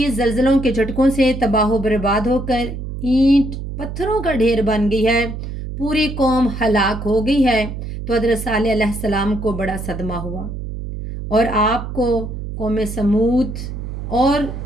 زلزلوں کے جھٹکوں سے تباہ و برباد ہو کر اینٹ پتھروں کا ڈھیر بن گئی ہے، پوری قوم ہلاک ہو گئی ہے، تو حضرت صالح علیہ السلام کو بڑا صدمہ ہوا اور آپ کو قوم سمود اور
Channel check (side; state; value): right; noise; hum, 7 dB below the sound